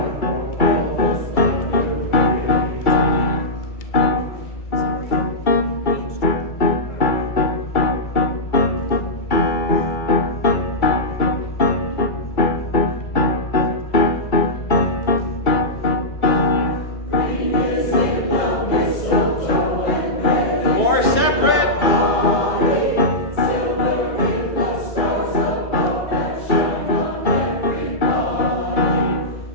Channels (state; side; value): late; right; 2.3 ms